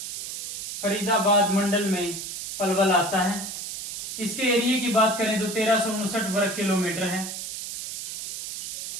फरीदाबाद मंडल में पलवल आता है। इसके एरिया की बात करें तो 1359 वर्ग किलोमीटर है।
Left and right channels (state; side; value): noise; right; hiss, 7 dB below the sound